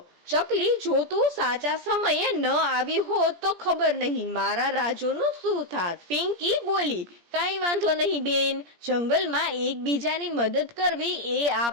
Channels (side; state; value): left; late; 17 ms